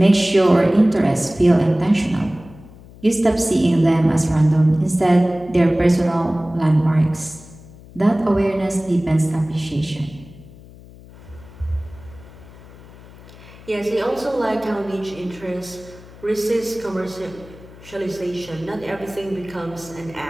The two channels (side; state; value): left; noise; hum, 20 dB below the sound